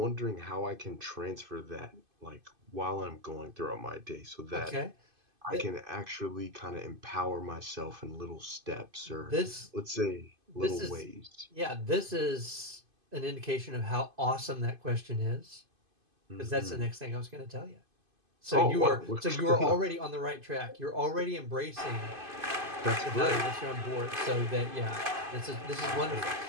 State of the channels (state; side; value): late; left; 2.5 ms